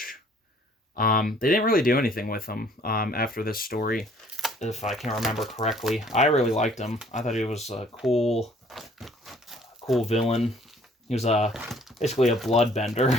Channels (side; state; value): both; normal; correlation 0.58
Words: They didn't really do anything with him after this story, if I can remember correctly. I really liked him. I thought he was a cool villain. He was basically a bloodbender.